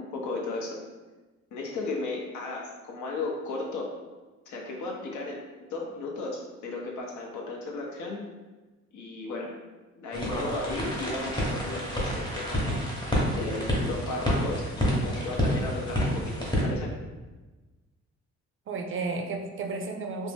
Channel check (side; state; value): both; normal; correlation 0.44